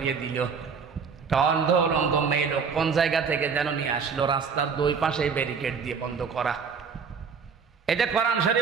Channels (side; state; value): left; quieter; 6.0 dB